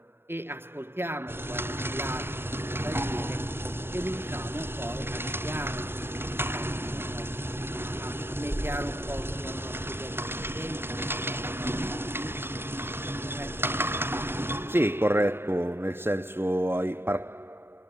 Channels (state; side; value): late; left; 0.11 ms